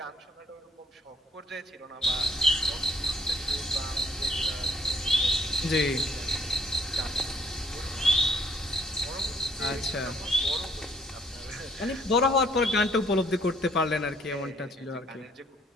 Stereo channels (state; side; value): normal; both; correlation 0.64